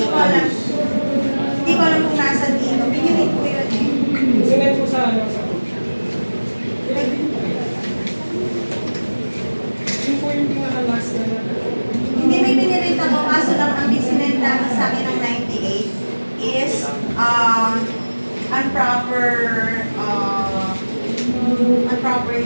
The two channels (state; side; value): inverted; both; correlation -1.00